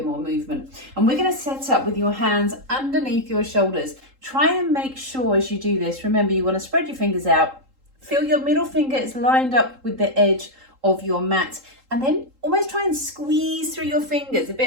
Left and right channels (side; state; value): left; late; 3.8 ms